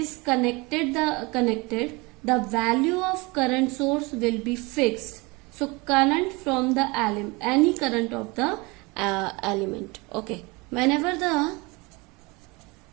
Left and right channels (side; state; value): left; quieter; 25.8 dB